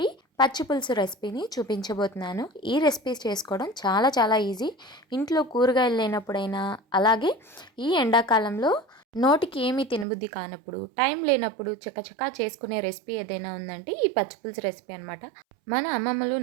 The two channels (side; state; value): left; drops out; at 10.1 s